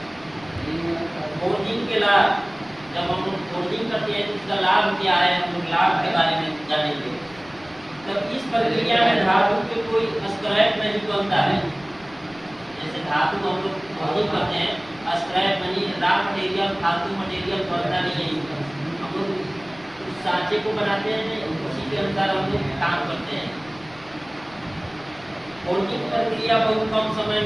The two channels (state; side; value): noise; left; rumble, 24 dB below the sound